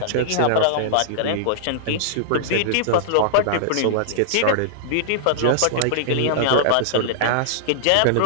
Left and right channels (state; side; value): different; both; correlation -0.01